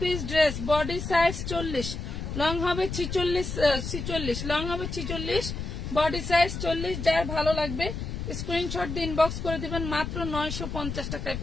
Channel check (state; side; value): noise; left; rumble, 5 dB below the sound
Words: piece dress, body size 40, long হবে 46, লং হবে 46, বডি সাইজ 40। যার ভালো লাগবে স্ক্রিনশট দিয়ে ইনবক্স করে দিবেন, মাত্র 950 টাকায়